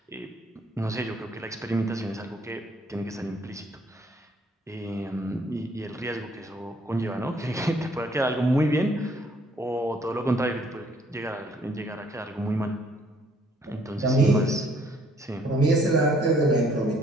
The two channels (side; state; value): both; normal; correlation 0.64